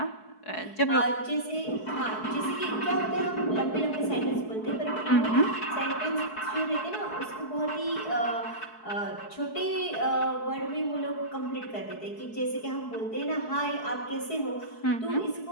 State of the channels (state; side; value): late; right; 4.7 ms